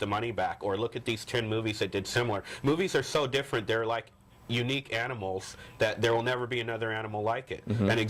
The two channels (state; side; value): identical; both; correlation 1.00